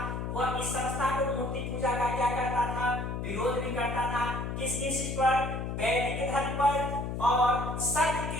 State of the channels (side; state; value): left; noise; hum, 4 dB below the sound